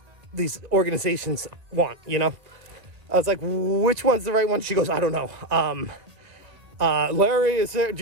organizations want, I was like, which one's the right one? She goes, I don't know. Larry, is there, do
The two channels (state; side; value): late; left; 1.6 ms